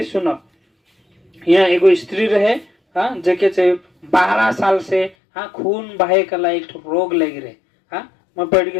सुनो। यहाँ एगो स्त्री रहे हाँ जेके 12 साल से हाँ खून बहे कला एक रोग लग रहे हाँ मैं पढ़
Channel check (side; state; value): right; drops out; at 5.2 s